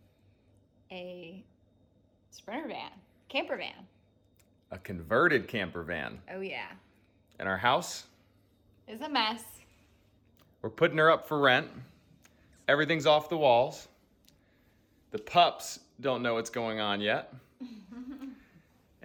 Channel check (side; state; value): both; identical; correlation 1.00